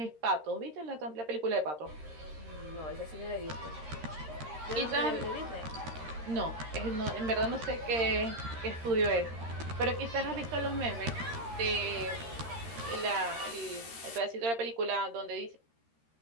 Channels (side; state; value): left; late; 13 ms